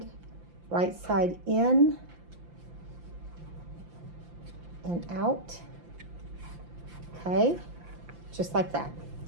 right side in, and out. Okay, just like that.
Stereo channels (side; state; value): left; late; 5.8 ms